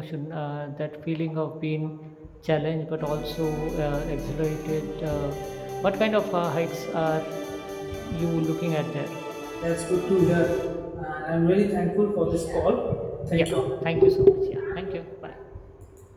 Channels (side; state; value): both; identical; correlation 1.00